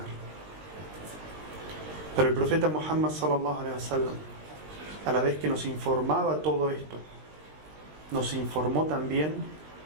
Pero el profeta Muhammad sallallahu alaihi wasallam, a la vez que nos informaba todo esto, nos informó también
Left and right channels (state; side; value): late; left; 20 ms